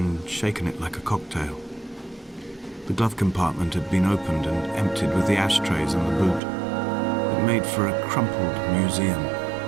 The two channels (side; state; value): left; drops out; at 6.4 s